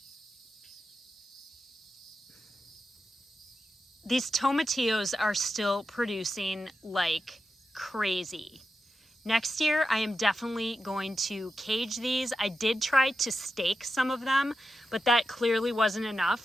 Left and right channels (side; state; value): both; normal; correlation 0.89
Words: These tomatillos are still producing like crazy. Next year, I am definitely going to cage these. I did try to stake some of them, but that clearly wasn't